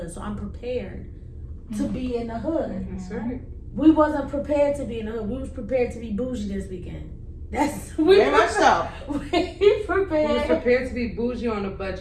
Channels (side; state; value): both; identical; correlation 1.00